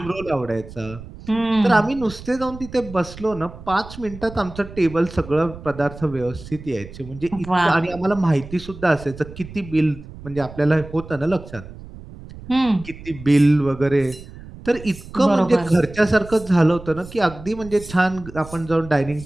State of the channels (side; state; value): right; noise; rumble, 15 dB below the sound